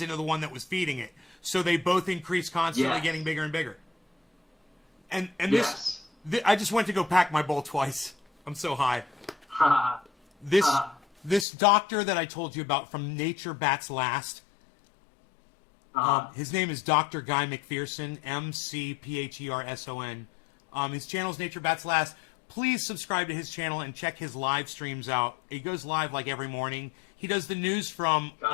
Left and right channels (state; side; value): drops out; right; at 11.5 s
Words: into the one that was feeding it. So they both increase constantly, Yes. getting bigger and bigger. And Yes. I just went to go pack my bowl twice. I'm so high. This doctor that I told you about from Nature Bats Last, his name is Dr. Guy McPherson, McPherson. His channel's Nature Bats Last. Please subscribe to his channel and check his live streams out. He goes live like every morning. He does the news from